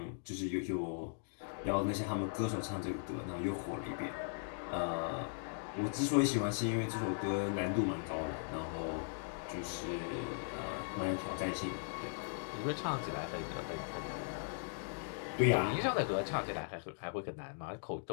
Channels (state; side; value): silent; right; digital silence